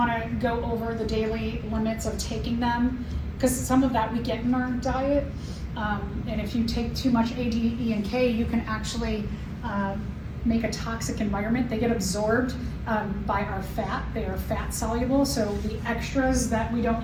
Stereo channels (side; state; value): both; identical; correlation 1.00